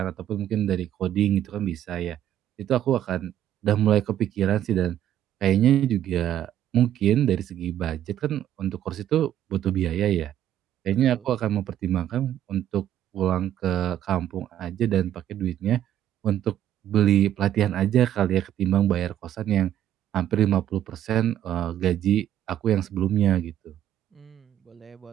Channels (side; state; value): left; quieter; 11.3 dB